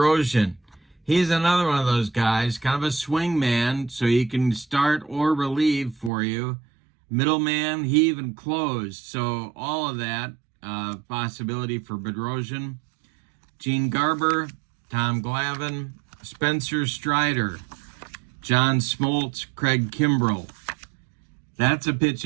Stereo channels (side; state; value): left; drops out; at 6.1 s